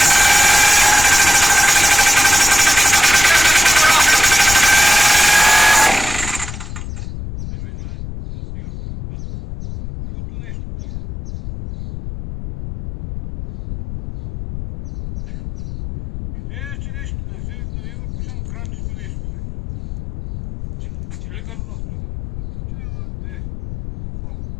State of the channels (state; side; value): noise; left; rumble, 11 dB below the sound